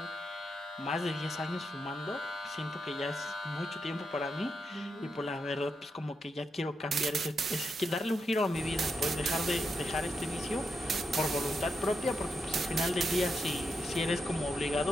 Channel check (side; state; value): both; normal; correlation 0.84